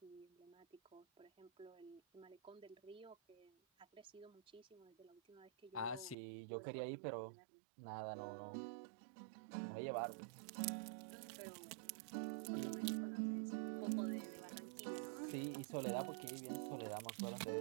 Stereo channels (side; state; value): left; drops out; at 6.2 s